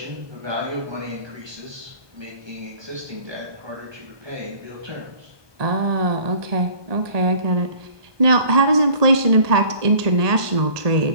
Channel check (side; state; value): left; late; 1.2 ms